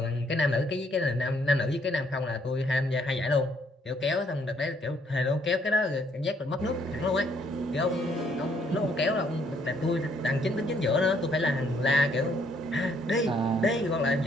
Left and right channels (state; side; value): normal; both; correlation 0.68